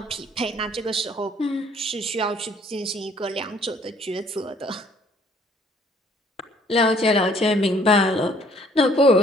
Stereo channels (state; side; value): normal; both; correlation 0.61